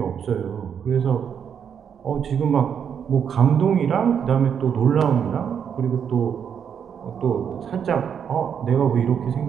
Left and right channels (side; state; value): left; quieter; 7.8 dB